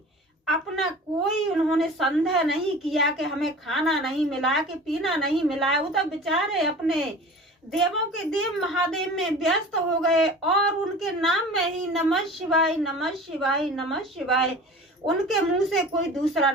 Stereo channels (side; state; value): both; normal; correlation 0.40